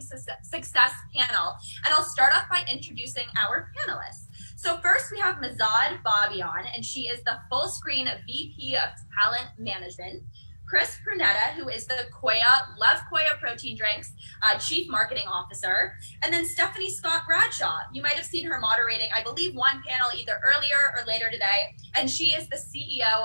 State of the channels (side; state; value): both; inverted; correlation -1.00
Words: panel, and I'll start off by introducing our panelists. So first we have Mahzad Babayan, and she is the full screen VP of Talent Management. Chris Pruneda, who is the Love Koya Protein Drinks Chief Marketing Officer. And then Stephanie Scott-Bradshaw. You might have seen her moderating, I believe, one panel either earlier or later today. And she is the CEO